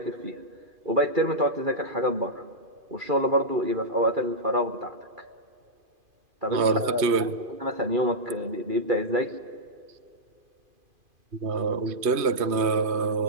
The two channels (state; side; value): late; left; 2.5 ms